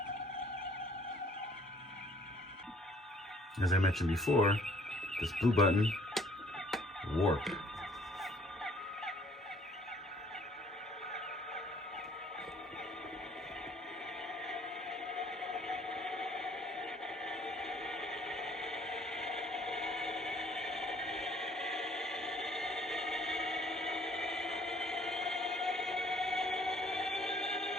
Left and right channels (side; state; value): both; normal; correlation 0.59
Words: As I mentioned before, this blue button, warp.